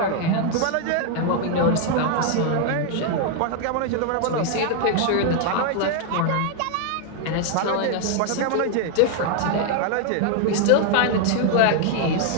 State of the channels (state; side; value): different; both; correlation 0.00